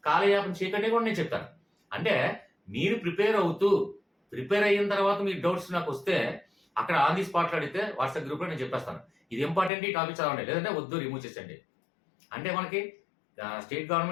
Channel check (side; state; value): right; drops out; at 9.7 s